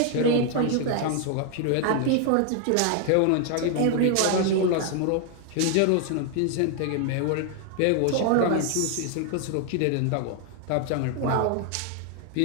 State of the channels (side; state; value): both; different; correlation 0.00